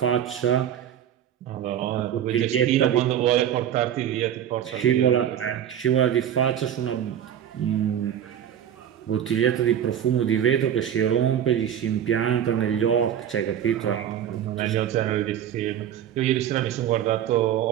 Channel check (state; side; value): quieter; left; 10.0 dB